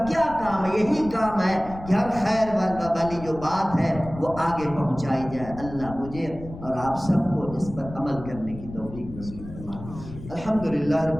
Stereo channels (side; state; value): left; noise; rumble, 14 dB below the sound